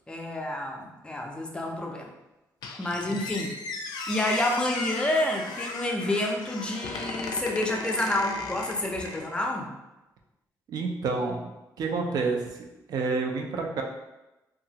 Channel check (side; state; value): both; normal; correlation 0.57